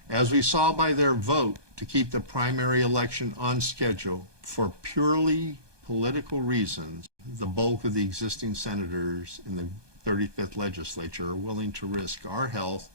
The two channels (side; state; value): left; late; 1.2 ms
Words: As we saw by their vote to keep the primary election on schedule for purely political reasons, the bulk of the existing senators in the 35th legislature are willing to risk our health,